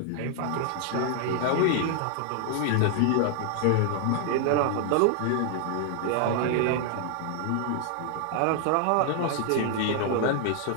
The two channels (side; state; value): both; different; correlation 0.00